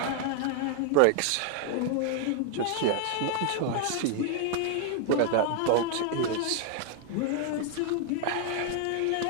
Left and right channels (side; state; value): both; different; correlation 0.00